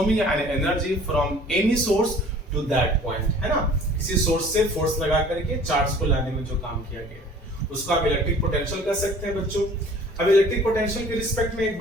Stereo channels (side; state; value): both; normal; correlation 0.49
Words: an energy from any source to that point, है ना, किसी source से force लगा करके charge को लाने में जो काम किया गया उसको आप इलेक्ट्रिक पोटेंशियल कह सकते हैं बच्चों। अब इलेक्ट्रिक पोटेंशियल के रिस्पेक्ट में एक